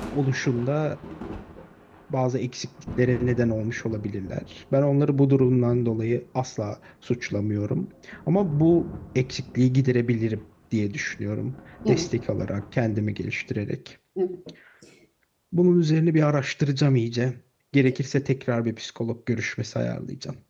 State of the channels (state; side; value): identical; both; correlation 1.00